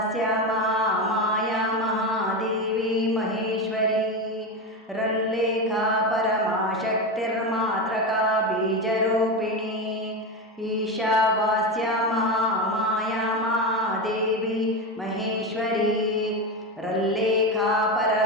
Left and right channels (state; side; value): normal; both; correlation 0.17